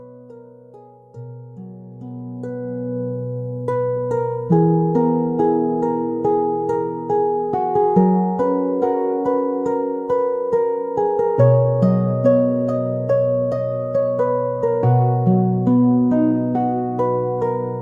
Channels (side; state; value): both; identical; correlation 1.00